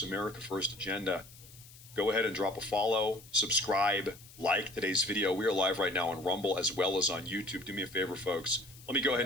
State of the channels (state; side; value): noise; left; hiss, 20 dB below the sound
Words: America First agenda, go ahead and drop a follow, subscribe, like today's video. We are live right now on Rumble as well as on YouTube. Do me a favor, folks. Let me go ahead